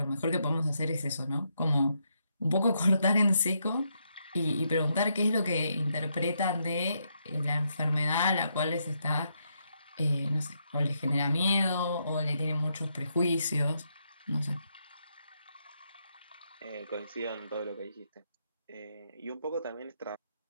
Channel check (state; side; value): inverted; both; correlation -0.79